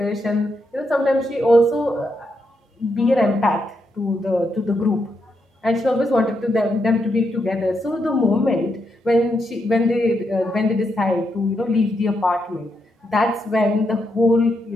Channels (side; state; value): both; normal; correlation 0.81